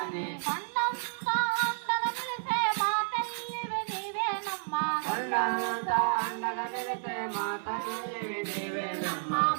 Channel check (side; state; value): left; silent; 57 dB below the other